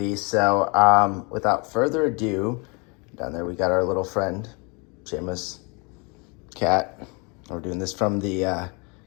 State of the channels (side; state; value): right; quieter; 31.1 dB